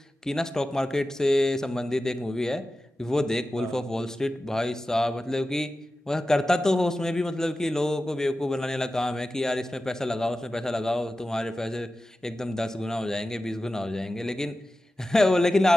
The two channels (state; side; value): normal; both; correlation 0.94